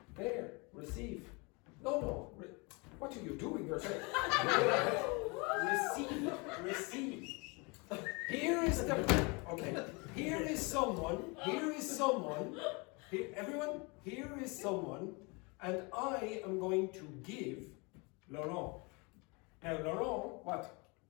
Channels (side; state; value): right; quieter; 29.3 dB